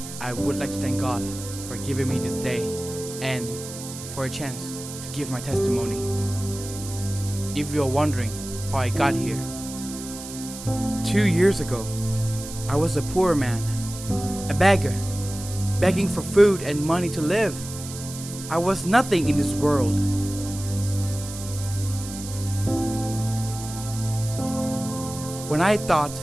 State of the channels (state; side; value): noise; right; hiss, 11 dB below the sound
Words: I would like to thank God for giving me this day and for a chance to give my testimony. If you're wondering how I got here, 2 years ago, I was a poor man, a beggar, begging for food and money to live. I was nothing in this world. When I thought